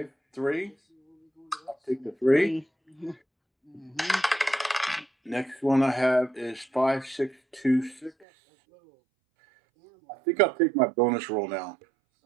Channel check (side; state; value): left; drops out; at 8.2 s